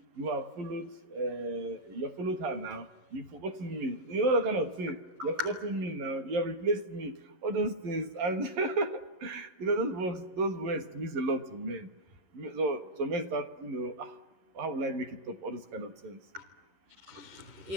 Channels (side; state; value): left; late; 11 ms